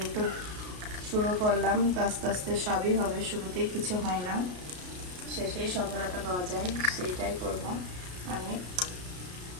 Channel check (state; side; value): late; left; 33 ms